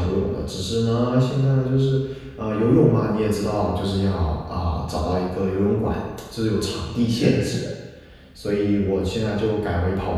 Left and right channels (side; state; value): both; identical; correlation 1.00